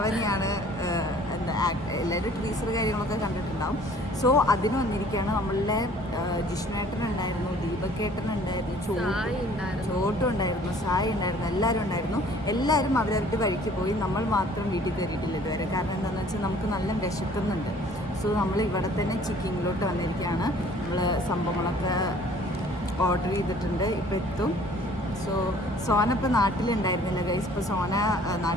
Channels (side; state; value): both; normal; correlation 0.54